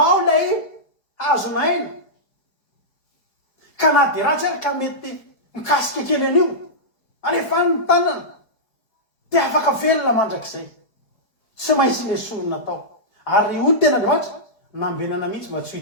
lay hazonaina. Ka na dia ratsy ary ka mety mikasika kely an'io, alefa ny tanana dia afaka velona mandrakizay. Tsy maintsy ilay sorona tao. Ary io tena Andriamanitra nambenana mihitsy mba tsy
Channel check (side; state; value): right; late; 4.5 ms